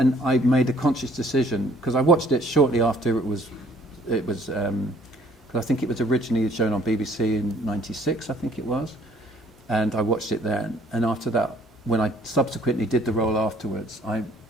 I made a conscious decision, because I watched it shortly after it was because I think it was originally shown on BBC in '96, I think it was. And I watched it then. And after that, when I subsequently did the role afterwards, I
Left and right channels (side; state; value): both; normal; correlation 0.59